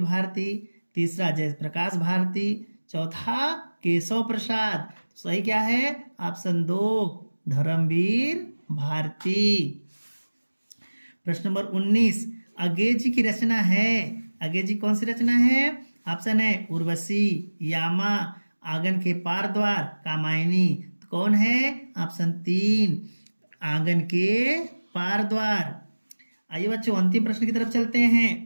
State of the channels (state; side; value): inverted; both; correlation -1.00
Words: भारती, तीसरा जयप्रकाश भारती, चौथा केशव प्रसाद। सही क्या है? ऑप्शन 2 धर्मवीर भारती। प्रश्न नंबर 19। अज्ञे जी की रचना है? अज्ञे जी कौन सी रचना है? ऑप्शन है उर्वशी, यामा, आंगन के पार द्वार, कामायनी। तो कौन है? ऑप्शन 3 आंगन के पार द्वार। आइए बच्चों अंतिम प्रश्न की तरफ चलते हैं।